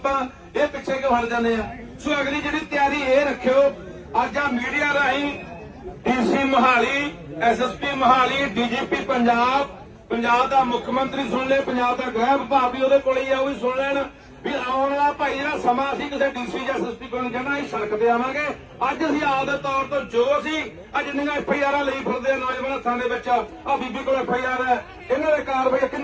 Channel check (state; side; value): identical; both; correlation 1.00